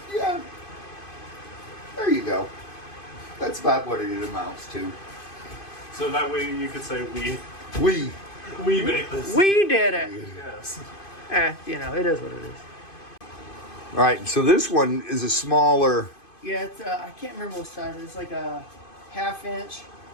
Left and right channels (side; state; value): right; late; 2.5 ms